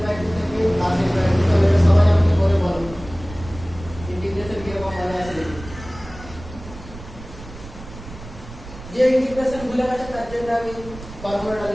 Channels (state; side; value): noise; right; rumble, 15 dB below the sound